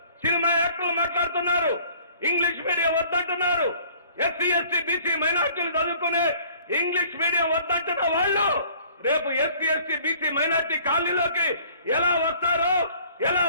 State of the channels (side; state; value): both; inverted; correlation -0.54